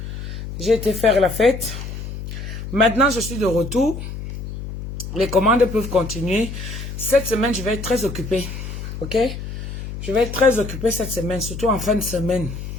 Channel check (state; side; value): noise; left; hum, 8 dB below the sound